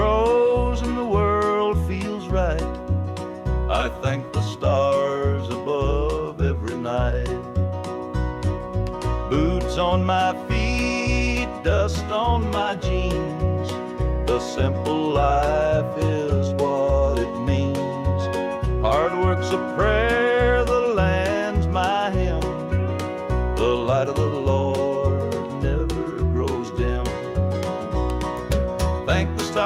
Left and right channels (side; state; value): both; identical; correlation 1.00